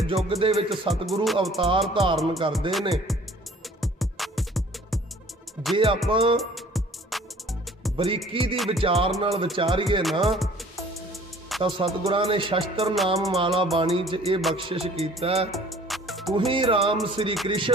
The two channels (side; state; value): both; normal; correlation 0.52